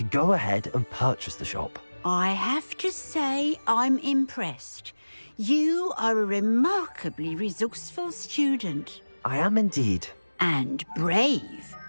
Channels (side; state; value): both; inverted; correlation -1.00